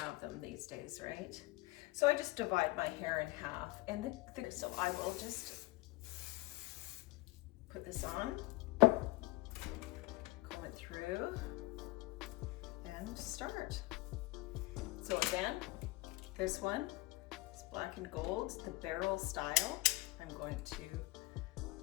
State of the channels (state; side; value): quieter; right; 19.7 dB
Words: them these days, right? So I just divide my hair in half, and so I will just put this on, comb it through, and start. So again, this one is black and gold, the barrel style. I'm going to